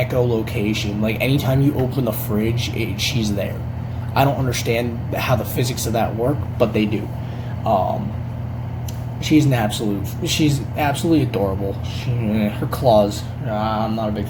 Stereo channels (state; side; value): identical; both; correlation 1.00